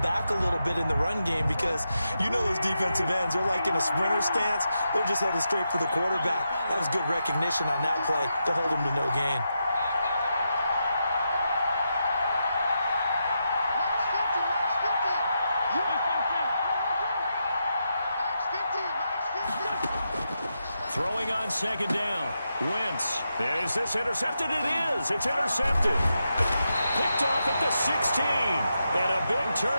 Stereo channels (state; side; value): inverted; both; correlation -0.85